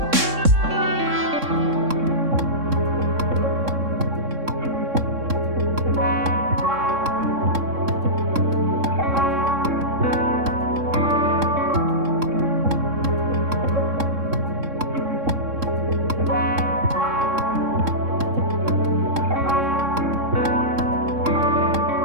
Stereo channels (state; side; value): late; left; 3.6 ms